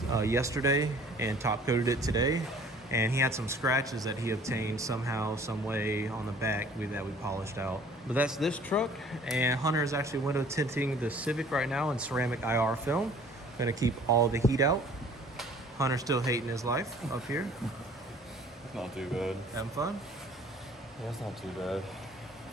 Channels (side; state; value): both; normal; correlation 0.52